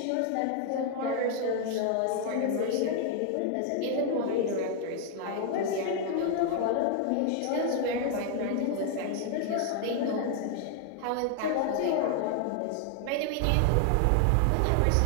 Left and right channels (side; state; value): both; different; correlation 0.00